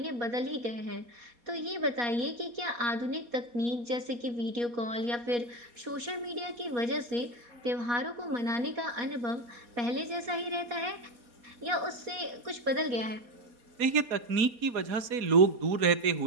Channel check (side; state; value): left; late; 4.2 ms